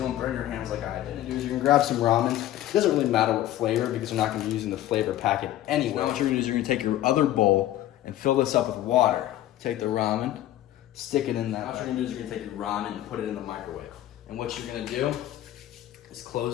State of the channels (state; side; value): quieter; right; 13.4 dB